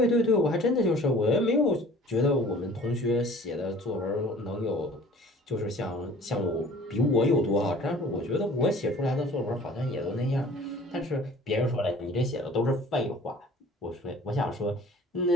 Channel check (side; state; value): both; normal; correlation 0.49